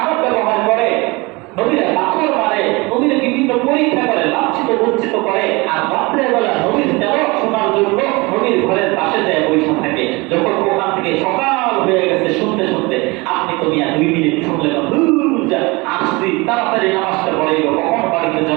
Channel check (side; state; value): left; quieter; 25.0 dB